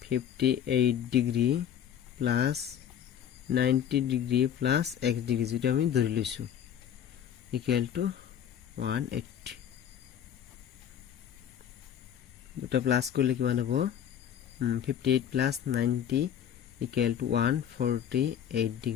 58 degree plus 90 degree plus x degree, যেটা আমি ধৰি লৈছো ইকুয়াল টু 180। দুটা প্লাস করলে কিমান হ'ব 58 plus 90 equal to 148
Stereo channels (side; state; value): right; quieter; 9.4 dB